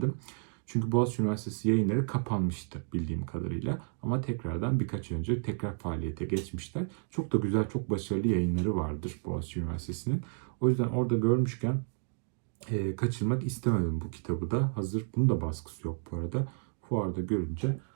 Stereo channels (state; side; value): silent; left; 57 dB below the other